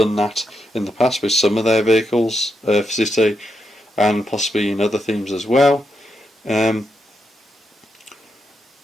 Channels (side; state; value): both; normal; correlation 0.83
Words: that in the past with some of their vehicles for City, and possibly in other themes as well. And